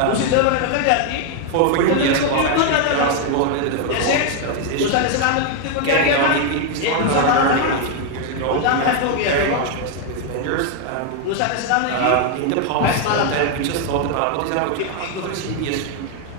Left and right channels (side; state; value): both; different; correlation 0.01